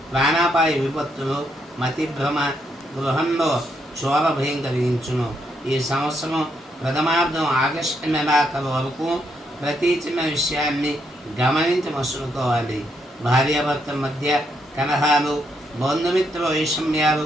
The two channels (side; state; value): both; normal; correlation 0.77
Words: ప్రాణాపాయ విపత్తులు, మతిభ్రమ, గృహంలో చోర భయం కలిగించును. ఈ సంవత్సరం ప్రథమార్థం ఆగస్టు నెలాఖరు వరకు ప్రతి చిన్న విషయాన్ని గమనించి మసులుకోవాలి. భార్యాభర్తల మధ్య కలహాలు, బంధుమిత్రుల వైషమ్యాలు,